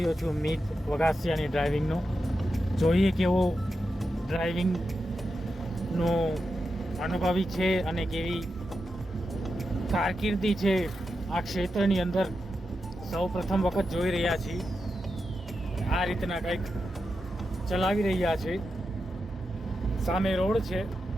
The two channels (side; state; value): both; normal; correlation 0.88